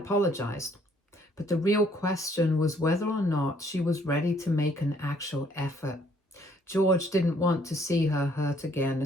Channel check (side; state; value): both; normal; correlation 0.64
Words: but the real question was whether or not she was ready to make an actual effort. George didn't want to see her hurt again,